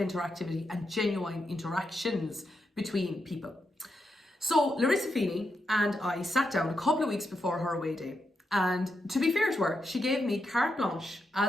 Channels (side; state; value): both; normal; correlation 0.84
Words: and genuine interactions between people. So Larissa Feeney and I sat down a couple of weeks before her away day, and to be fair to her, she gave me carte blanche